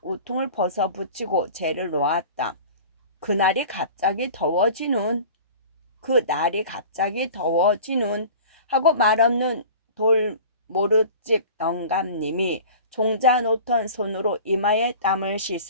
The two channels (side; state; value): both; inverted; correlation -0.41